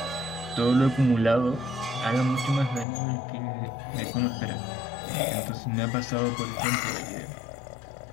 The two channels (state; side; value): drops out; right; at 2.9 s